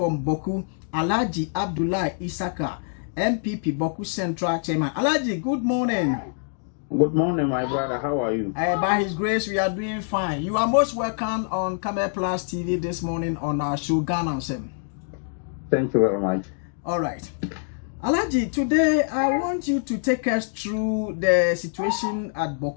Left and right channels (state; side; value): silent; right; digital silence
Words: Bawku, Alhaji Abdulai Issaka, NPP Bawku Central Chairman. Alhaji, good morning. Good morning, my brother. How are you? By His grace, we are doing fine. You are most welcome on Camel Plus TV this morning on our show, Ghana. Thank you very much. All right. Alhaji, today I want you to take us through the situation at